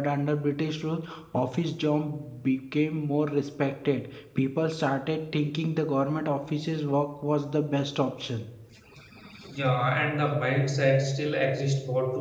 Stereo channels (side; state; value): both; identical; correlation 1.00